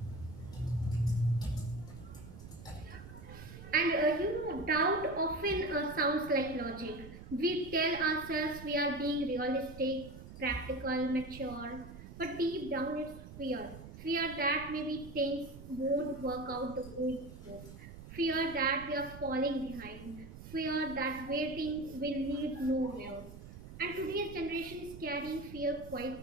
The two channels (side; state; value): right; noise; rumble, 14 dB below the sound